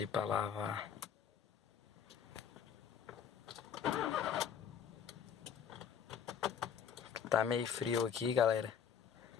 pra lavar. Tá meio frio aqui, galera.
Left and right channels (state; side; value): quieter; right; 7.7 dB